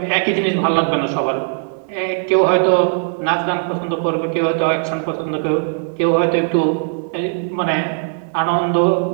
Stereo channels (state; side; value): silent; left; digital silence